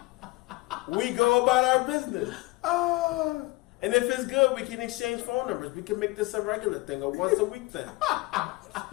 We go about our business. And if it's good, we can exchange phone numbers. We can make this a regular thing, a once a week thing.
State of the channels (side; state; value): right; quieter; 22.4 dB